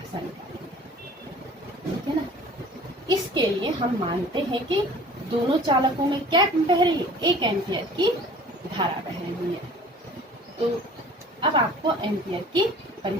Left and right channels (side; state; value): both; normal; correlation 0.47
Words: निकालेंगे, ठीक है ना। इसके लिए हम मानते हैं कि दोनों चालकों में क्या बह रही है, 1 एम्पियर की धारा बह रही है। तो अब आपको एम्पियर की